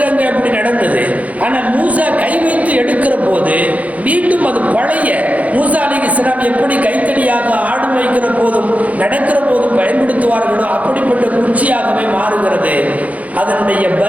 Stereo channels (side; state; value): left; late; 0.070 ms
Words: அங்கே அப்படி நடந்தது. ஆனால் மூசா கை வைத்து எடுக்கிற போது மீண்டும் அது பழைய மூசா அலைஹிஸ்ஸலாம் எப்படி கைத்தடியாக ஆடு வைக்கிற போதும் நடக்கிற போதும் பயன்படுத்துவார்களோ அப்படிப்பட்ட குச்சியாகவே மாறுகிறது. அதனுடைய